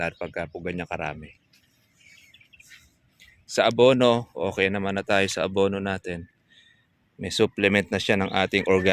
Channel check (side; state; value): both; identical; correlation 1.00